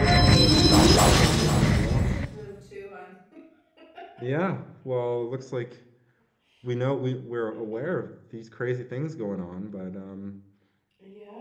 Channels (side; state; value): both; identical; correlation 1.00